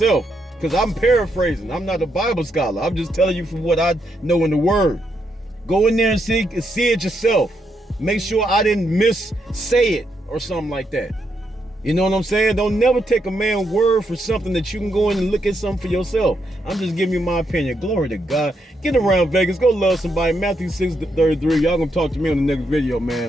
Because I'm paraphrasing. I'm not a Bible scholar. I'm just telling you from what I know in the word. Go in there and see it yourself. Make sure I didn't say it or something like that. You know what I'm saying? Don't never take a man's word for something that you can go in and look at something for yourself. I'm just giving you my opinion. Glory to God. Get around Vegas. Go love somebody. Matthew 6:33. Y'all gonna talk to me on the next video,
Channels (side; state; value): both; normal; correlation 0.80